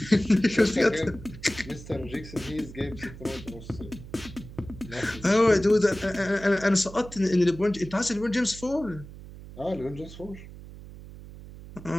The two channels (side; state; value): right; noise; hum, 15 dB below the sound